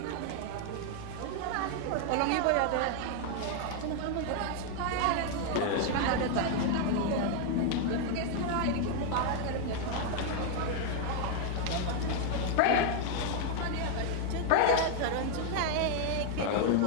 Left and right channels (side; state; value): both; different; correlation 0.00